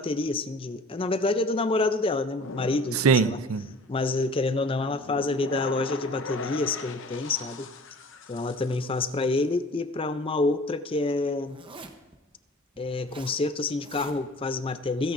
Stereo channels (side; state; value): both; normal; correlation 0.44